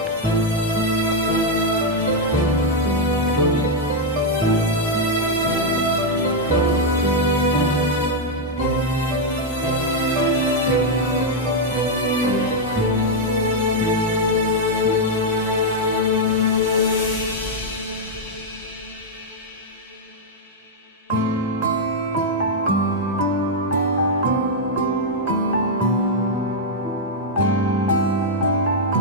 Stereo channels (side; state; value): both; normal; correlation -0.01